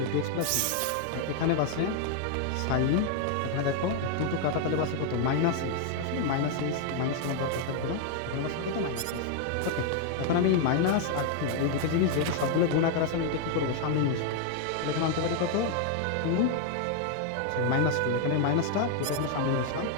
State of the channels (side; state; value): both; different; correlation 0.00